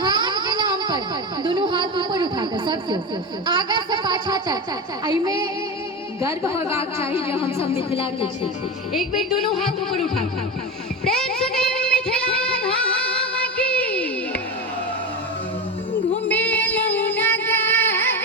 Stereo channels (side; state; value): both; normal; correlation 0.21